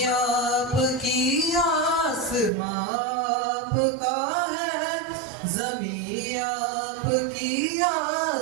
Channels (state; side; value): drops out; left; at 2.5 s